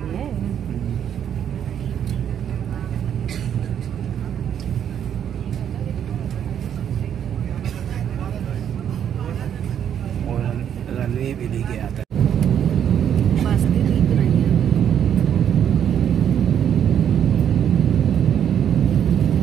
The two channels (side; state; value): left; quieter; 9.1 dB